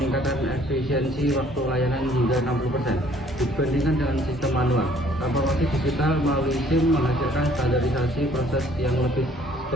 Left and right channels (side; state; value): both; normal; correlation 0.59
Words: efisiensi waktu layanan hingga 60% dibandingkan dengan sistem manual. Transformasi digital melalui SIM menghasilkan standarisasi proses yang lebih